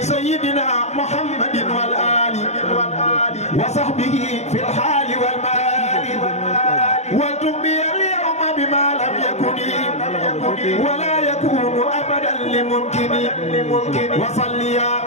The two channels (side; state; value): right; late; 0.32 ms